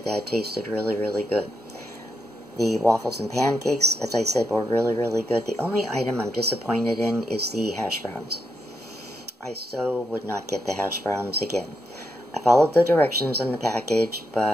that it tasted really, really good. The waffles and pancakes, as I said, were really, really good. The only item I'm disappointed in is the hash browns. I so would not get the hash browns again. I followed the directions on the package,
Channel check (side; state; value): both; normal; correlation 0.82